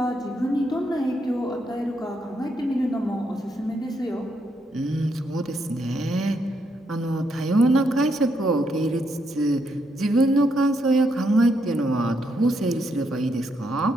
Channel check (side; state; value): both; normal; correlation 0.77